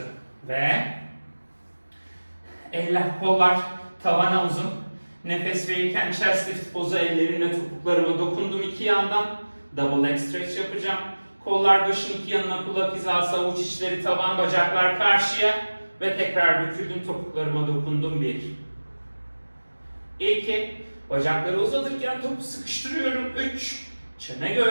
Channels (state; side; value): inverted; both; correlation -1.00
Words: ve eller, kollar tavana uzun. Nefes verirken chest lift pozu, ellerimle topuklarıma dokundum iki yandan. Double leg stretch yapacağım. Kollar başın iki yanına, kulak hizası, avuç içleri tavan, bacaklar karşıya ve tekrar büküldüm, topuklarıma dokundum 1 2 bacakları uzatırken topu sıkıştırıyorum 3 çene